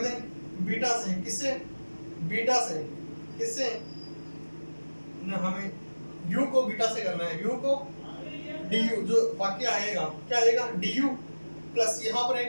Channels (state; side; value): inverted; both; correlation -1.00